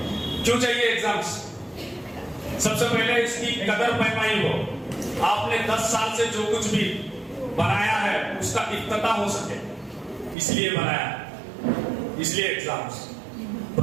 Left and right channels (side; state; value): left; drops out; at 10.4 s